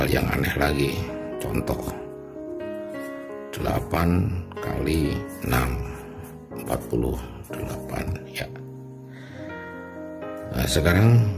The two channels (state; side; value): identical; both; correlation 1.00